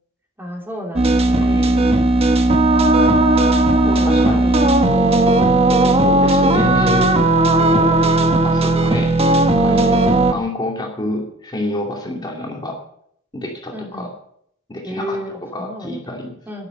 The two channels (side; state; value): both; normal; correlation 0.53